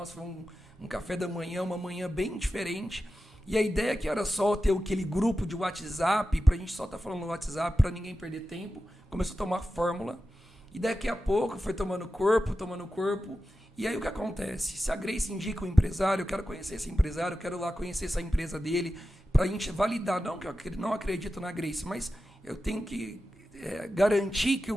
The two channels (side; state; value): both; normal; correlation 0.92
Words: foi um café da manhã, uma manhã bem diferente. E a ideia que era só ter aquele grupo de WhatsApp, para a gente só estar falando no WhatsApp, para ninguém perder tempo, começou a tomar fórmula. E daqui a pouco foi tomando corpo. E aí o que acontece? Se a Grace indica um empresário, eu quero conhecer esse empresário, eu quero lá conhecer essa empresa dele, para a gente validar, não que eu não acredito na Grace, mas eu tenho que garantir que o